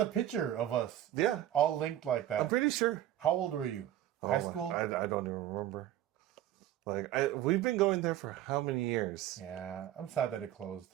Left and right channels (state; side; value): quieter; left; 12.6 dB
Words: picture of us. Yeah. All linked like that. I'm pretty sure. How old were you? High school? I don't even remember. Like, we've been going there for how many years? Yeah, I'm sad that it closed.